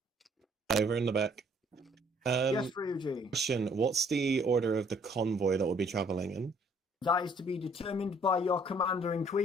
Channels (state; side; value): normal; both; correlation 0.62